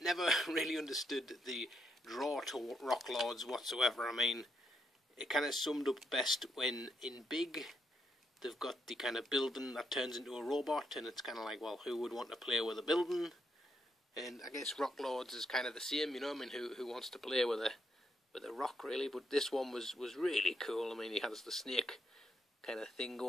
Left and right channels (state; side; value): normal; both; correlation 0.77